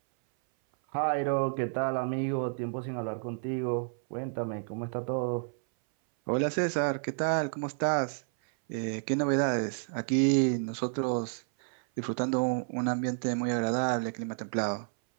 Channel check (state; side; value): silent; left; 57 dB below the other